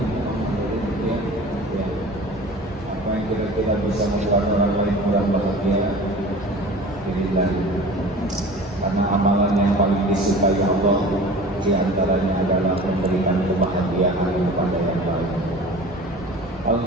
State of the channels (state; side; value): normal; both; correlation 0.40